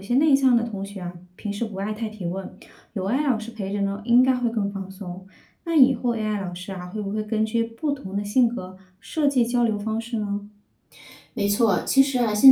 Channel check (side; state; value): both; identical; correlation 1.00